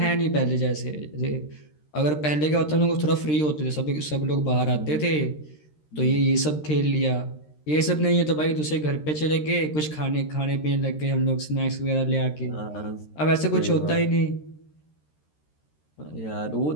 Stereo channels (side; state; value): right; late; 13 ms